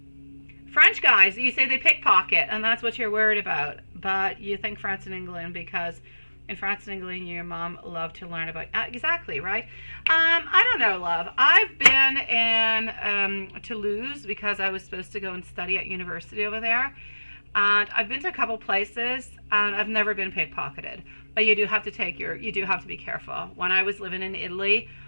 French guys, you say they pickpocket, and that's what you're worried about. But you think France and England because in France and England, your mom loved to learn about... exactly, right? I don't know, love. I've been in Toulouse because I was supposed to go and study at university over there. And I've been to a couple places, and I've never been pickpocketed. But you do have to be careful. When I was living in Italy,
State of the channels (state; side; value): inverted; both; correlation -1.00